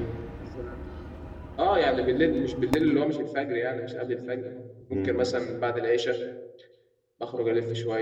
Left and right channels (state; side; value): identical; both; correlation 1.00